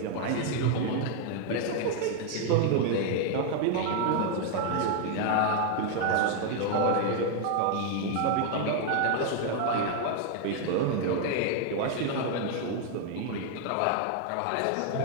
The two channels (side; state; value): both; different; correlation 0.00